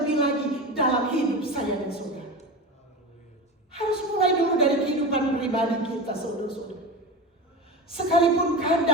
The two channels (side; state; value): both; normal; correlation 0.26